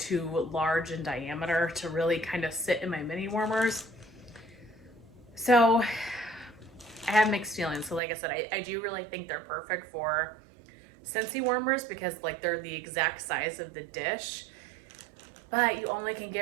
large in diameter to really kind of sit in my mini warmers. So I have mixed feelings. So like I said, I do really think they're perfect for Scentsy warmers because like they're the exact size of the dish, but you only can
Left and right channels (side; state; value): left; drops out; at 8.0 s